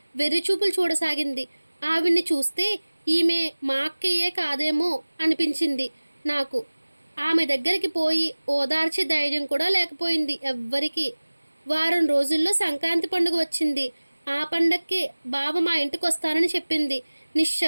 వెర్రిచూపులు చూడసాగింది. ఆవిడ్ని చూస్తే ఈమె మా అక్కయ్యే కాదేమో అనిపించింది నాకు. ఆమె దగ్గరికి పోయి ఓదార్చే ధైర్యం కూడా లేకపోయింది ఎవ్వరికి. వారం రోజుల్లో సంక్రాంతి పండుగ వచ్చింది. ఆ పండక్కి బావ మా ఇంటికి వస్తానని చెప్పింది.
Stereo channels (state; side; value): inverted; both; correlation -1.00